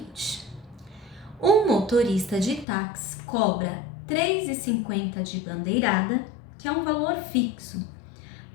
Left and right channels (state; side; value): drops out; right; at 2.7 s